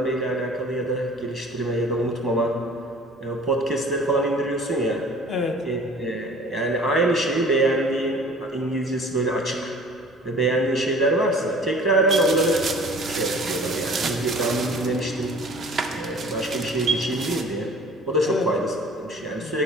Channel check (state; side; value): normal; both; correlation 0.47